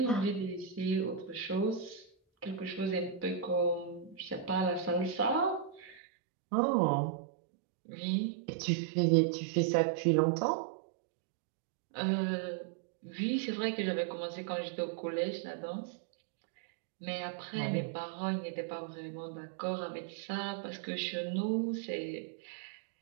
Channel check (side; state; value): left; drops out; at 6.0 s